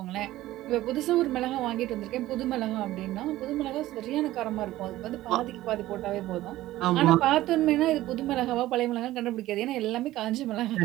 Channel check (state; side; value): quieter; left; 15.7 dB